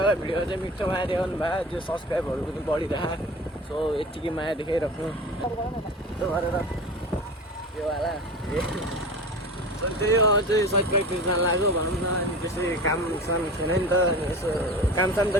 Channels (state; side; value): normal; both; correlation 0.34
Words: भिडियो चाहिँ मिठो माया देखाउनु भयो त्यो सब्सक्राइबहरू पनि बढिरह सो यत्तिकै माया देखाइराख्नु त्यो गरेर यो वाला त्यही हो चाहिँ सट प्र्याक्टिस जान लाग्यो भनौँ न अनि त्यसै काम साम थिएन नि त अनि यसो काम साम त